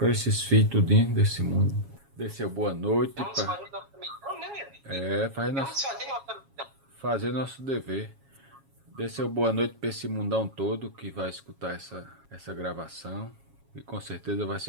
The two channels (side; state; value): left; late; 7.3 ms